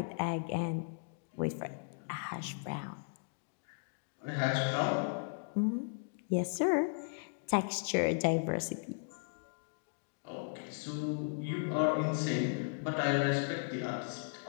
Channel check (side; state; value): right; silent; digital silence